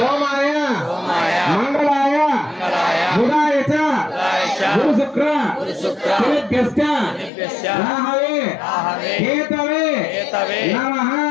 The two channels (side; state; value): right; drops out; at 7.3 s